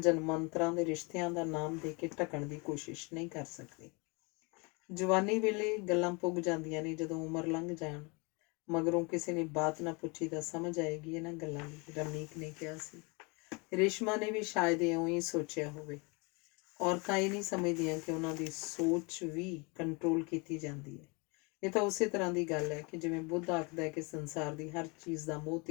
ਦੇ ਰਿਸ਼ਤਿਆਂ ਦਾ ਨਾਮ ਦੇ ਕੇ ਢਕਣ ਦੀ ਕੋਸ਼ਿਸ਼ ਨਹੀਂ ਕਰ ਸਕਦੀ। ਜਵਾਨੀ ਵੇਲੇ ਗੱਲਾਂ ਪੁੱਗ ਜਾਂਦੀਆਂ ਨੇ, ਜਦੋਂ ਉਮਰ ਲੰਘ ਜਾਣ ਮਗਰੋਂ ਕਿਸੇ ਨੇ ਬਾਤ ਨਾ ਪੁੱਛੀ ਤਾਂ ਸਮਝ ਆਏਗੀ ਇਹਨਾਂ ਗੱਲਾਂ ਦੀ, ਰਮਨੀਕ ਨੇ ਕਿਹਾ ਸੀ। ਰੇਸ਼ਮਾ ਨੇ ਵੀ ਸ਼ਾਇਦ ਇਉਂ ਹੀ ਸੋਚਿਆ ਹੋਵੇ। ਔਰਤਾਂ ਇਹ ਨਹੀਂ ਸਮਝਦੀਆਂ ਕਿ ਉਹਨਾਂ ਦੀ ਸੋਚ ਵੀ ਕੰਟਰੋਲ ਕੀਤੀ ਜਾਂਦੀ ਹੈ। ਇਹ ਤਾਂ ਉਸੇ ਤਰ੍ਹਾਂ ਦੀ ਗੱਲ ਹੈ ਕਿ ਜਿਵੇਂ ਬੁੱਧ ਆਖਦਾ ਹੈ ਕਿ ਸੰਸਾਰ ਦੀ ਹਰ ਚੀਜ਼ ਦਾ ਮੋਹ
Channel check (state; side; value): quieter; right; 29.7 dB